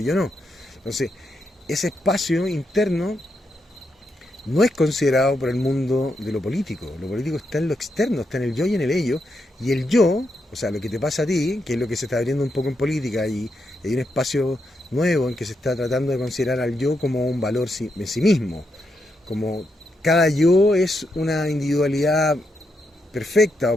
yo no. Entonces, ese espacio interno no es considerado por el mundo de lo político. Lo político está en lo externo, está en el yo y en el ello. Y el yo, o sea, lo que te pasa a ti, que es lo que se está abriendo un poco en política, y hay un espacio nuevo en que se está tratando de considerar al yo como un valor en sí mismo. Como cada yo es una individualidad perfecta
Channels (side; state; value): both; normal; correlation 0.82